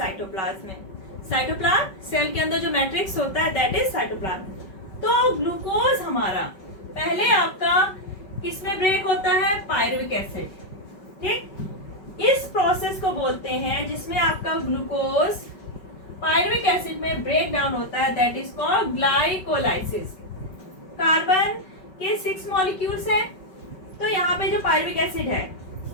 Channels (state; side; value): late; right; 5.3 ms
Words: में। साइटोप्लाज्म सेल के अंदर जो मैट्रिक्स होता है दैट इज साइटोप्लाज्म। तो ग्लूकोज हमारा पहले आपका किसमें ब्रेक होता है, पायरुविक एसिड, ठीक। इस प्रोसेस को बोलते हैं जिसमें आपका ग्लूकोज पायरुविक एसिड में ब्रेक डाउन होता है, that is called glycolysis. Carbon के 6 मॉलिक्यूल्स हैं, तो यहाँ पे जो पायरुविक एसिड है,